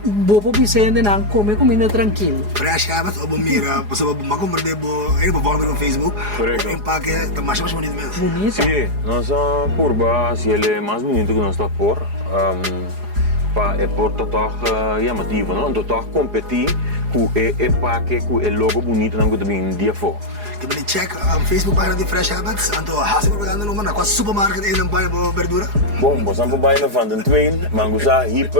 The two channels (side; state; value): left; late; 4.8 ms